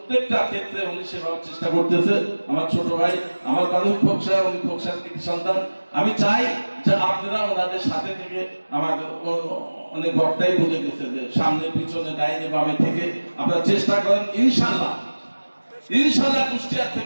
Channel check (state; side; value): inverted; both; correlation -1.00